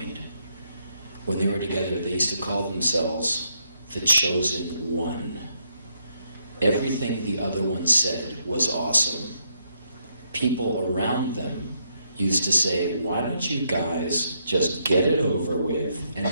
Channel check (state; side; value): inverted; both; correlation -0.77